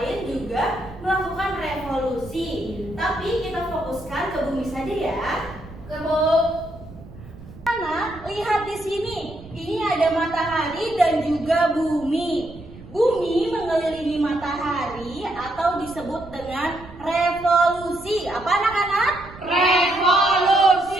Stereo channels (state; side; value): noise; right; rumble, 18 dB below the sound